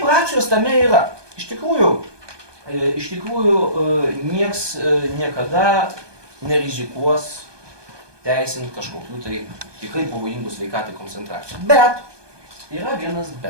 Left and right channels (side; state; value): left; late; 1.2 ms